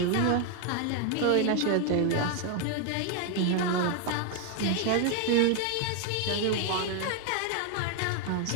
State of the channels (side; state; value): both; different; correlation 0.01